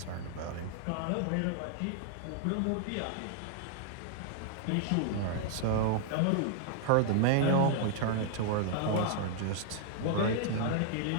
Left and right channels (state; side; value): different; both; correlation -0.01